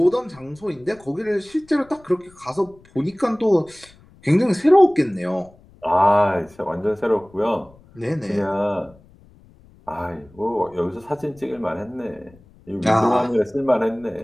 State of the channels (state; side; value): noise; left; rumble, 27 dB below the sound